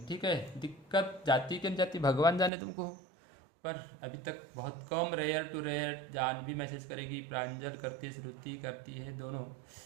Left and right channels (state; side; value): drops out; left; at 2.5 s